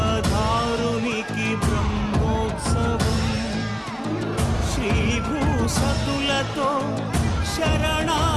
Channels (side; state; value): both; identical; correlation 1.00